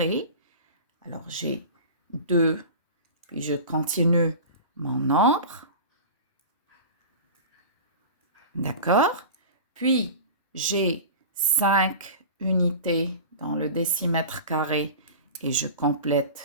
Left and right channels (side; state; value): both; inverted; correlation -0.34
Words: alors j'ai 2, puis je continue mon nombre. D'accord? Puis, j'ai 5 unités dans le décimètre carré et je